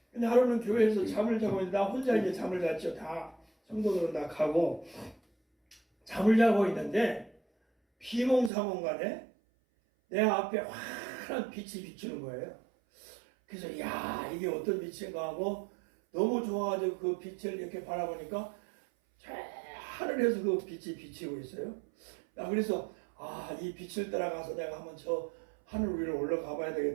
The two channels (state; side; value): drops out; left; at 8.5 s